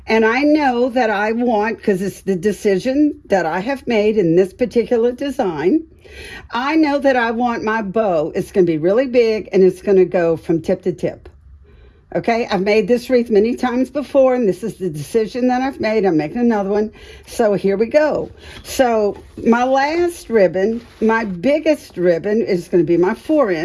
and I know that I want, because it's the decision that I have made in this particular design, I know that I want my bow, it's going to be really big, and it's going to go from tip to tip. Okay, I've made this wreath many times before, and this is the decision that I've made. I'm making another one. So here we go. So my last ribbon, my biggest ribbon, is going to be my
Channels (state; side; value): identical; both; correlation 1.00